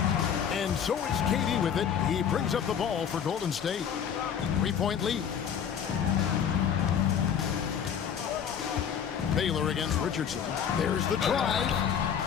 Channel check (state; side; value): quieter; right; 8.1 dB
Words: And so it's KD with it. He brings up the ball for Golden State. 3-point lead. Baylor against Richardson. There's the drive.